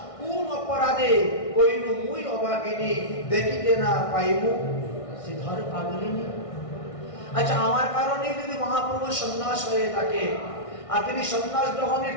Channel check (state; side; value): late; right; 1.6 ms